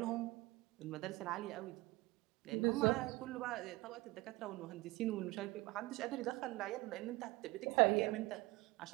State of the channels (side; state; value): left; quieter; 21.4 dB